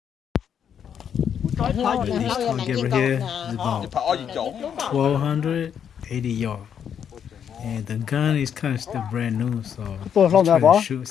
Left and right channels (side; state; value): right; quieter; 8.3 dB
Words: This target right here is about 1,280 yards. And the gun is kind of still brand new, so Tôi không try ra to bỏ. shoot,